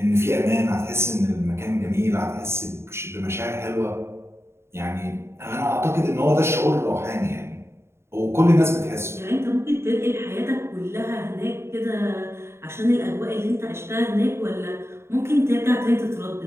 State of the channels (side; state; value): left; late; 0.12 ms